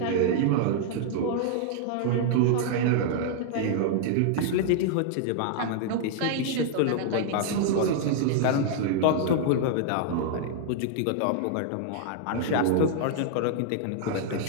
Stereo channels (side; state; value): both; different; correlation -0.01